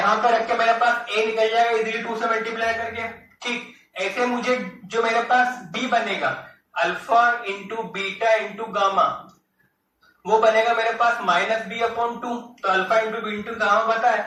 पर रख के मेरे पास ए निकल जाएगा इजीली 2 से मल्टीप्लाई करके। ठीक, ऐसे मुझे जो मेरे पास बी बनेगा alpha into beta into gamma, वो बनेगा मेरे पास माइनस बी अपॉन 2। तो alpha into B into gamma पता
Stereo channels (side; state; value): both; identical; correlation 1.00